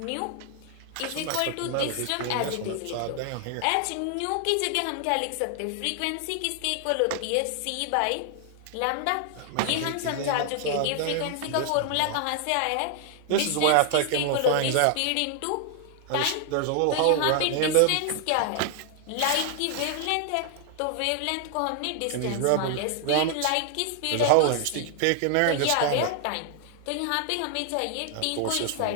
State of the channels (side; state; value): both; different; correlation 0.00